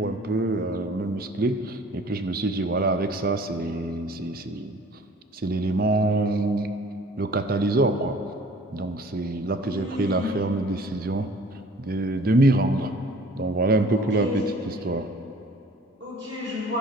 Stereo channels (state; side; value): normal; both; correlation 0.50